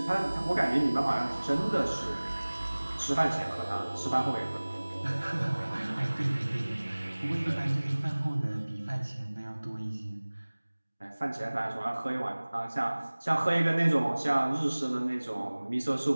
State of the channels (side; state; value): both; inverted; correlation -1.00